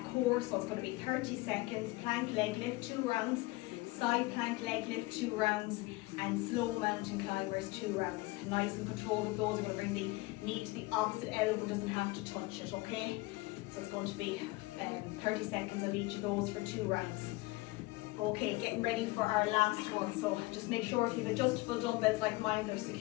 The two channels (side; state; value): right; quieter; 21.8 dB